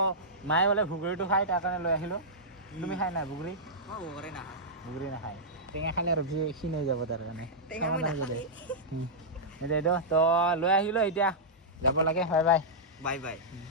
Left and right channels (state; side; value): normal; both; correlation -0.12